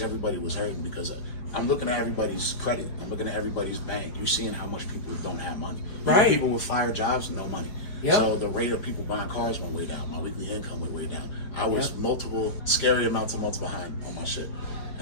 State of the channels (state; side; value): late; right; 4.8 ms